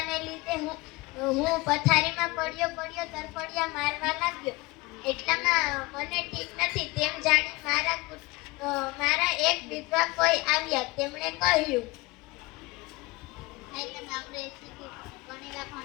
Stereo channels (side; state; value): right; quieter; 23.5 dB